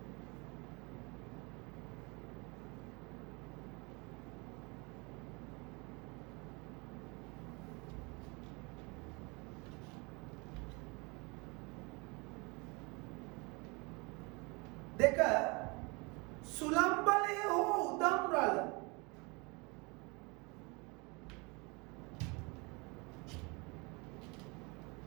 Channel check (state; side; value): quieter; left; 28.6 dB